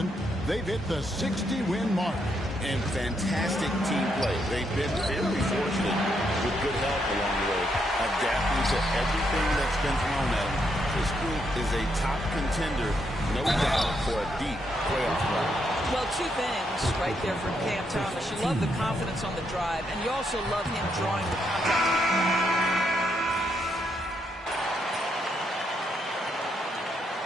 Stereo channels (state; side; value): normal; both; correlation 0.77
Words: They've hit the 60-win mark. And fantastic team play. They've been very fortunate with good help along the way, adapting to everything that's been thrown at them. This group is a top contender, no doubt, for a deep playoff run. Well, 2 things right there for Cam Thomas. You love the confidence on the drive, and you also love him drawing the contact.